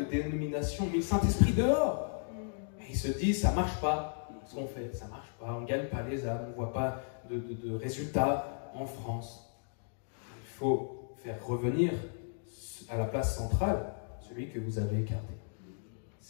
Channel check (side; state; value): right; silent; digital silence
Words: dénominations ont mis le Saint-Esprit dehors. Et ils se disent, ça ne marche pas ce qu'on fait, ça ne marche pas, on ne gagne pas les âmes, on ne voit pas de résultats en France. Il faut faire revenir à la place centrale celui que vous avez écarté.